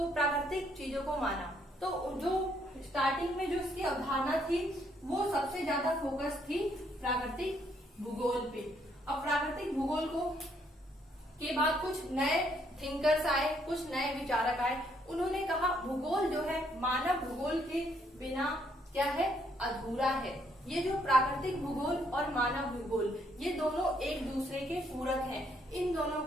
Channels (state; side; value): normal; both; correlation 0.71